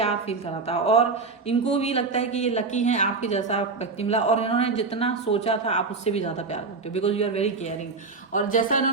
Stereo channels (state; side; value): quieter; left; 4.3 dB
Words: फील कराता है। और इनको भी लगता है कि ये लकी हैं, आपके जैसा व्यक्ति मिला, और इन्होंने जितना सोचा था आप उससे भी ज्यादा प्यार करते हो, because you are very caring. और जैसा